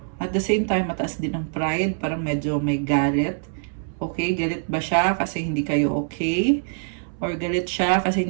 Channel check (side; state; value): left; silent; 63 dB below the other